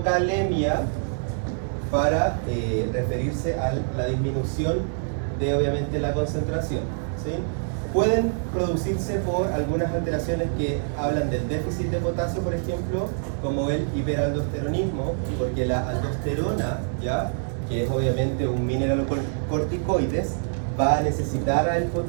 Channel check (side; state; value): left; silent; 62 dB below the other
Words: para referirse a la disminución de, obviamente, la concentración, ¿sí? Pueden producirse por algunas alteraciones que hablan del déficit de potasio, por ejemplo, como el hiperaldosteronismo, porque la aldosterona, ¿ya?, que es obviamente un mineralocorticoides, va a necesitar al